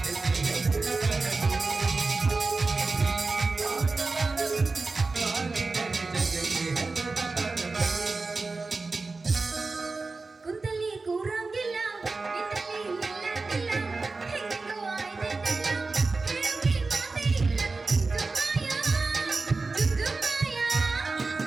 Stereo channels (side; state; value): left; quieter; 3.8 dB